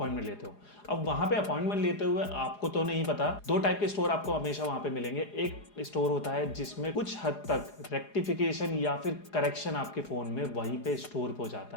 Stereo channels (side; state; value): right; late; 4.8 ms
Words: लेते हो। अब वहां पे अपॉइंटमेंट लेते हुए आपको तो नहीं पता, 2 टाइप के स्टोर आपको हमेशा वहां पे मिलेंगे। एक स्टोर होता है जिसमें कुछ हद तक रेक्टिफिकेशन या फिर करेक्शन आपके फोन में वहीं पे स्टोर हो